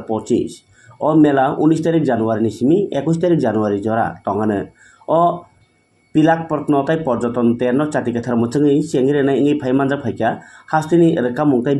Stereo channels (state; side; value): identical; both; correlation 1.00